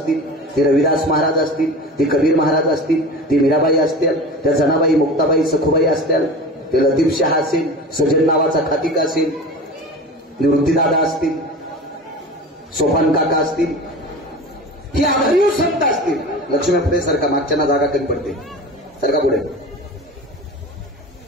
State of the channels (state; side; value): normal; both; correlation 0.34